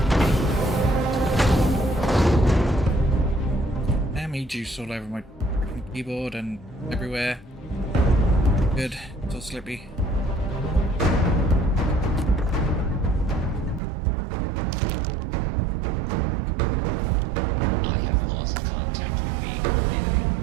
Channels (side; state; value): left; drops out; at 13.8 s